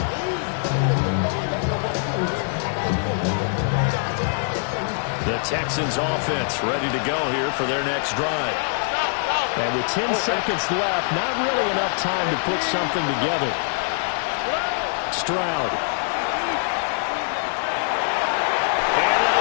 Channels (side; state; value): right; silent; digital silence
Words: The Texans offense ready to go here for their next drive. And with 10 seconds left, not really enough time to put something together. Stroud. And